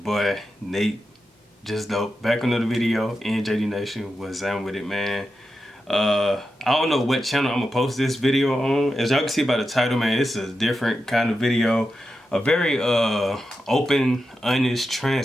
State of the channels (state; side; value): normal; both; correlation 0.89